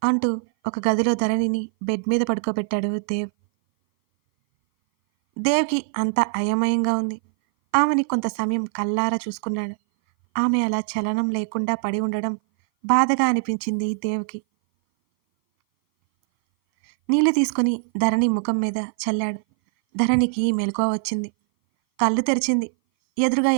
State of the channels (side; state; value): left; silent; 59 dB below the other